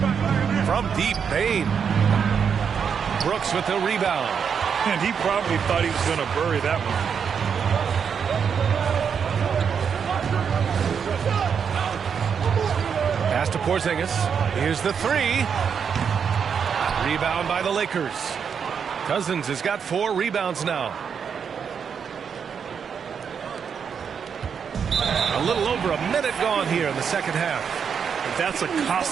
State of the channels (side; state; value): left; quieter; 6.9 dB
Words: From deep, Bane. Brooks with the rebound. And he probably thought he was going to bury that one. Pass to Porzingis. Here's the 3. Rebound by the Lakers. Cousins has got 4 rebounds now. A little over a minute gone here in the second half. That's a